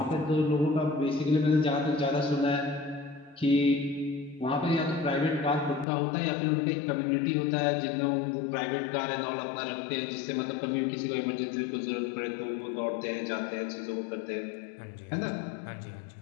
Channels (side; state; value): right; drops out; at 5.9 s